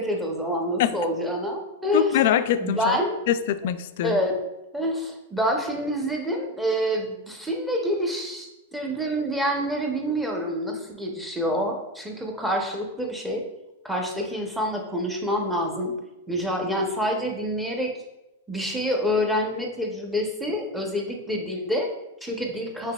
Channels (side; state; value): both; normal; correlation 0.16